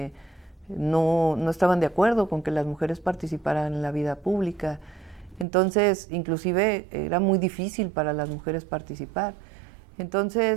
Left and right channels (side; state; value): left; drops out; at 5.5 s